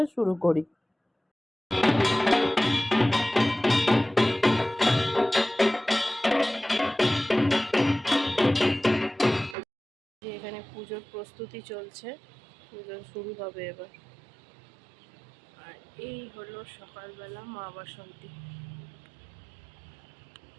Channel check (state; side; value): drops out; left; at 9.6 s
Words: শুরু করি। এখানে পুজোর প্রস্তুতি চলছে, পুজো শুরু হবে এবার। আর এই হলো সকালবেলা মা বাসন্তী।